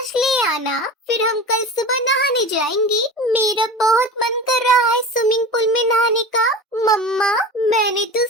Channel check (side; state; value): both; normal; correlation 0.32